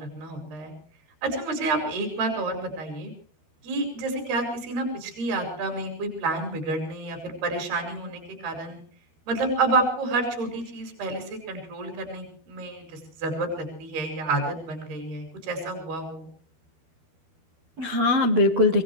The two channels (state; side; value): late; left; 12 ms